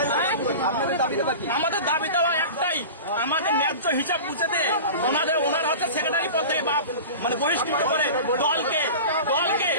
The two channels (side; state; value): both; inverted; correlation -0.34